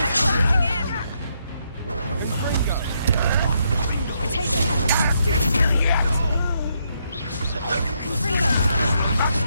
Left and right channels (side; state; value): both; inverted; correlation -0.77